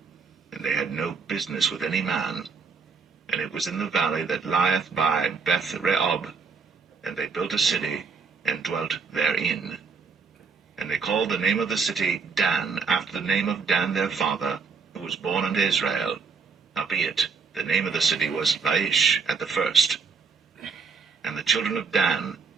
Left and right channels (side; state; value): left; quieter; 5.2 dB